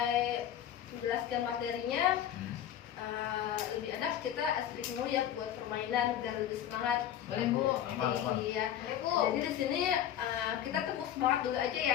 menjelaskan materinya, lebih enak kita speak dulu ya buat permainan biar lebih semangat. Boleh, Bu. Aman. Iya. Boleh, Bu. Jadi di sini kita tepuk semangat dulu aja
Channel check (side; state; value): right; quieter; 10.5 dB